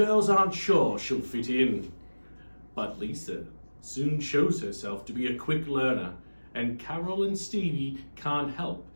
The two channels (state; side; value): inverted; both; correlation -1.00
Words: aren't sure she'll fit in. But Lisa soon shows herself to be a quick learner, and Carol and Stevie can't help